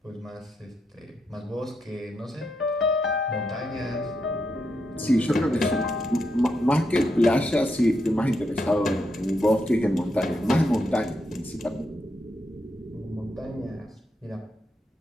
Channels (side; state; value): both; normal; correlation 0.82